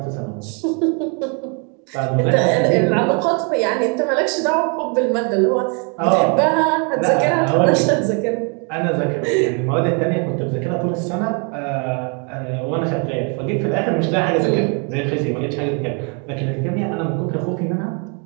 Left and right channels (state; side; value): quieter; left; 36.3 dB